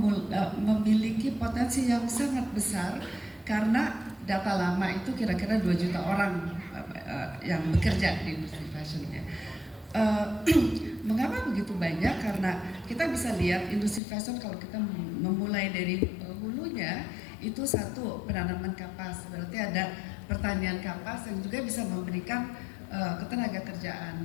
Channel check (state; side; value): drops out; right; at 14.0 s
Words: memiliki potensi yang sangat besar, karena data lama itu kira-kira 2 juta orang yang bekerja di industri fashionnya. Mengapa begitu banyak? Karena kita bisa lihat industri fashion kalau kita memulai dari hulunya, itu satu, penanaman kapas, berarti ada pertanian kapas yang juga bisa memberikan ketenaga